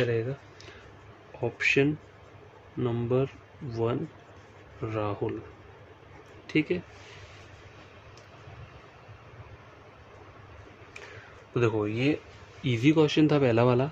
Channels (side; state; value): both; identical; correlation 1.00